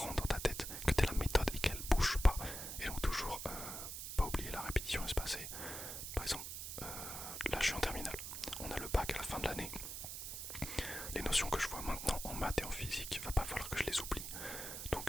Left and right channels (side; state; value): right; noise; hiss, 6 dB below the sound